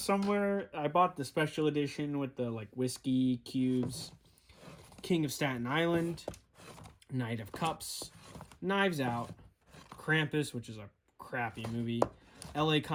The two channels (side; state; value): both; identical; correlation 1.00